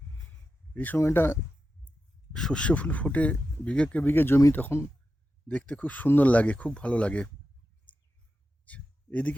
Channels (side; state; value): both; normal; correlation 0.90